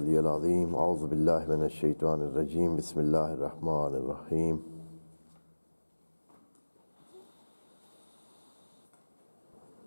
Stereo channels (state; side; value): inverted; both; correlation -1.00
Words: العظیم اعوذ باللہ من الشیطان الرجیم بسم اللہ الرحمن الرحیم